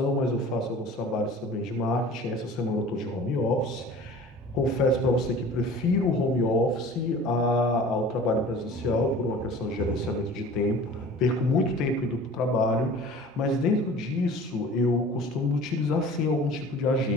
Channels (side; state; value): both; normal; correlation 0.43